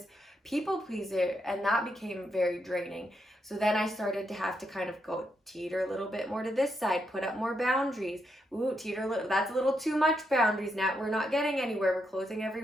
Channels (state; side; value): normal; both; correlation 0.81